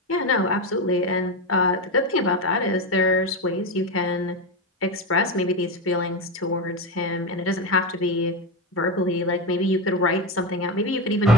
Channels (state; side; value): normal; both; correlation 0.15